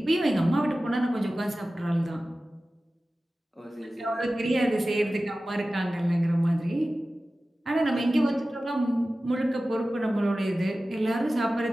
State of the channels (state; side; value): normal; both; correlation 0.96